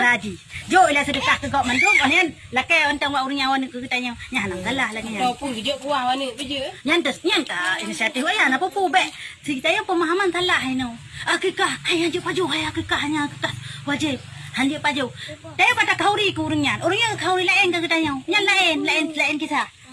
ji. Jo ila sedekah ke gok mandum onian lakai ontang wa urang nyawan ke tanya. Nya hanang salah lagi nya. Kau pun gejok kuah wane beje. Nyan ta inisiatif aya na popo be. Kita yang pemahaman salah no. Akikah hai hanje paju hai akikah hanya akikah wajib. Hanje paju. Tapi kata kauri ke urang nyan. Urang yang kauri lain ke tanya. Nyan lain kisah.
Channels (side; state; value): both; identical; correlation 1.00